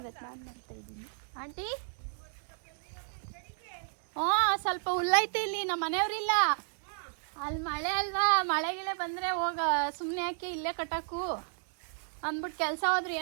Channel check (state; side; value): silent; left; 56 dB below the other